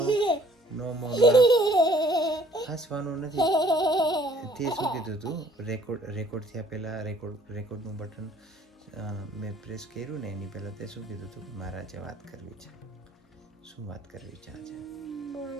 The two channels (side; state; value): both; normal; correlation 0.58